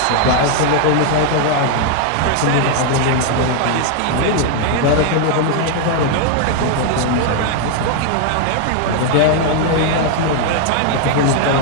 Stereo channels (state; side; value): different; both; correlation 0.00